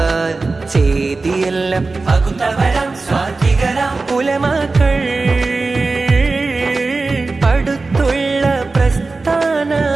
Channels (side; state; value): left; quieter; 3.7 dB